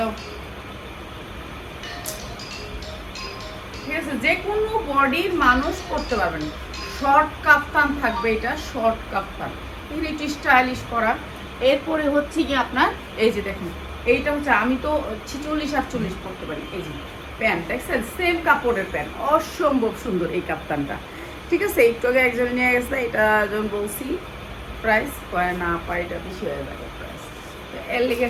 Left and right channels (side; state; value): both; identical; correlation 1.00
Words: ঠিক আছে? যে কোনো বডির মানুষ পরতে পারবেন। শর্ট কাফতান থাকবে, এটা শর্ট কাফতান, একটু স্টাইলিশ করা। এরপরে হচ্ছে কি আপনার এই যে দেখেন এইটা হচ্ছে আমি তো 46-48 পরতে পারি। এই যে প্যান্ট দেখছেন, সেম কাপড়ের প্যান্ট, অসম্ভব সুন্দর এই কাফতানটা, ঠিক আছে? একটু আগে একজন নিয়ে গেছে, এটা যখন বলছি প্রাইস কয় না পাই, এটা বেশি হয়ে যাবে প্রাইস, এর লেগে